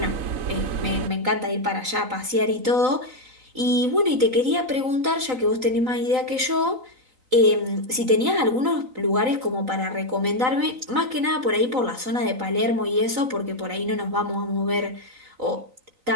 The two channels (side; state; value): left; late; 3.9 ms